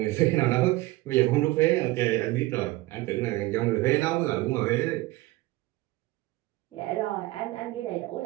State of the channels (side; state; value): left; quieter; 19.3 dB